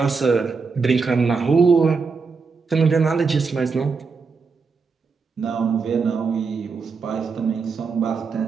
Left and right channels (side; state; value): left; quieter; 4.9 dB